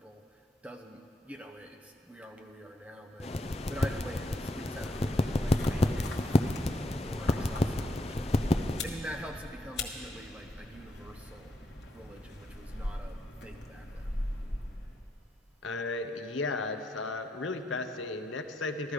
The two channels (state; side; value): normal; both; correlation 0.78